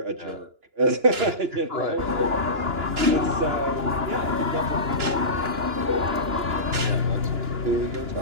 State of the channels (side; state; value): left; late; 2.9 ms